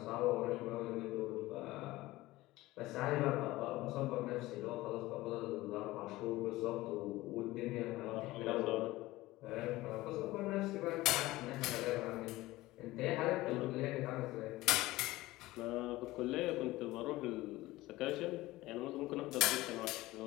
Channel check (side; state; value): right; quieter; 18.3 dB